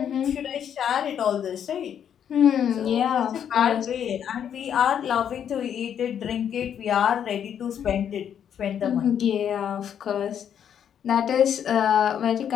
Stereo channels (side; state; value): right; quieter; 8.9 dB